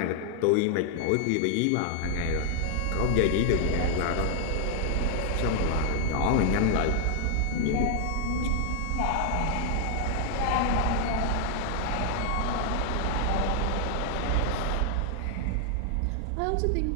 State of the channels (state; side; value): different; both; correlation 0.00